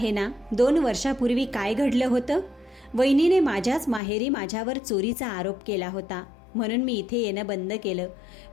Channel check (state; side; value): drops out; right; at 4.0 s